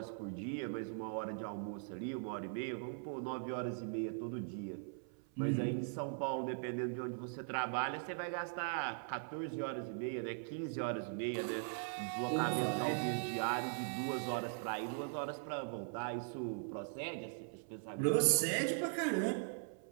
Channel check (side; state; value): left; silent; 51 dB below the other